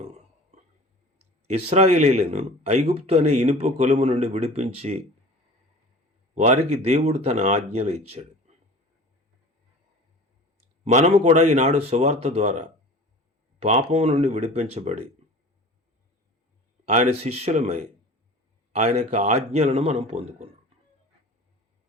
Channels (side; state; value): both; normal; correlation 0.40